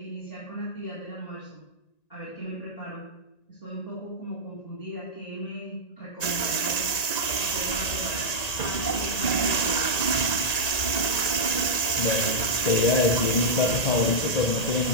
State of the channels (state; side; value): late; right; 1.9 ms